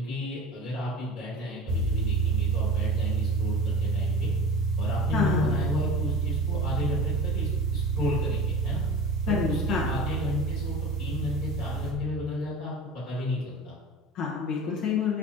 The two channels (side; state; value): both; normal; correlation 0.35